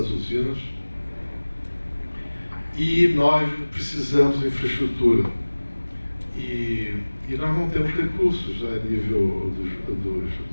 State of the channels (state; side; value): inverted; both; correlation -1.00